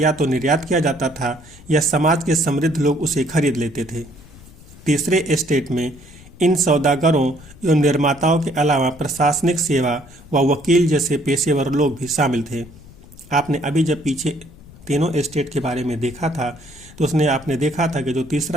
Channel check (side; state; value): left; noise; rumble, 21 dB below the sound